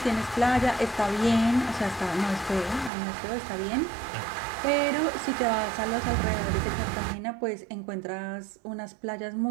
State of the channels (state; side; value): drops out; left; at 2.9 s